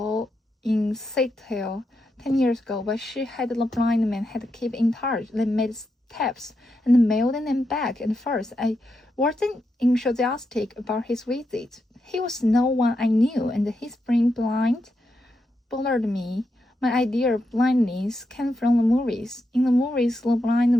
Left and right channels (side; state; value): both; normal; correlation 0.84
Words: 10 years ago, but she had the blind man had to keep in touch. They made tapes and mailed them back and forth. I wasn't enthusiastic about his visit. He was no one I knew, and his being blind bothered me. My idea of blindness came from the movies. In the movies, the blind